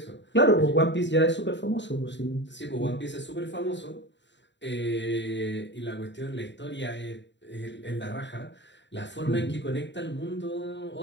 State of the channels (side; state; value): right; late; 0.52 ms